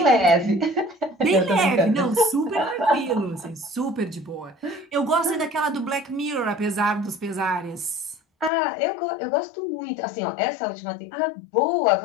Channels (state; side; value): drops out; right; at 8.5 s